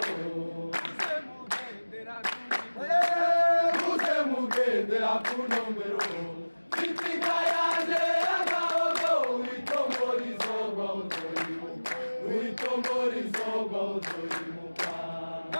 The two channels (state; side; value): inverted; both; correlation -1.00